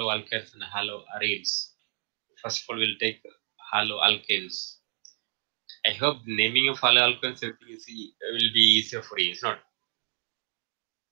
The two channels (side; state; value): left; silent; 59 dB below the other